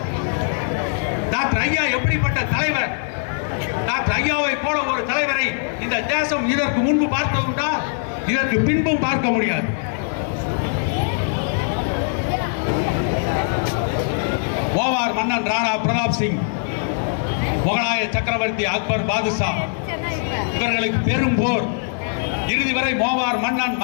டாக்டர் ஐயா எப்படிப்பட்ட தலைவர்? டாக்டர் ஐயாவை போல ஒரு தலைவரை இந்த தேசம் இதற்கு முன்பு பார்த்ததுண்டா? இதற்கு பின்பும் பார்க்க முடியாது. ஓவார் மன்னன் ராணா பிரதாப் சிங், முகலாய சக்கரவர்த்தி அக்பர் பாதுஷா, இவர்களுக்கு பெரும் போர். இறுதி வரை மோவார் மன்னன்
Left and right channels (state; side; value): silent; right; digital silence